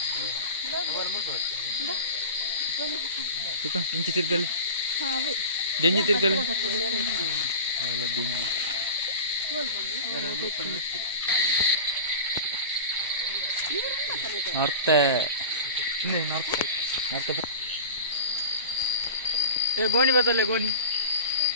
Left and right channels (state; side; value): inverted; both; correlation -0.32